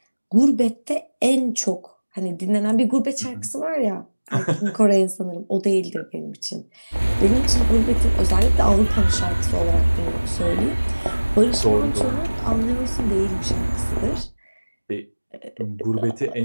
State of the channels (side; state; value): both; inverted; correlation -1.00